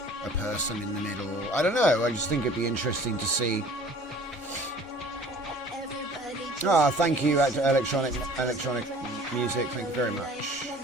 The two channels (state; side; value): normal; both; correlation 0.49